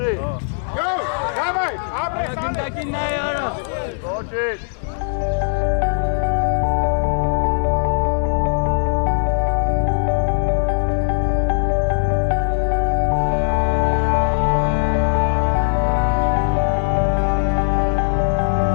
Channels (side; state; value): right; silent; digital silence